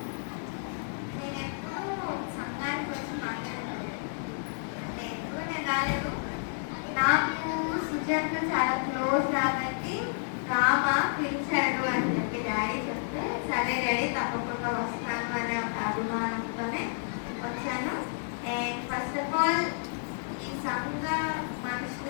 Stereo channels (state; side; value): silent; right; digital silence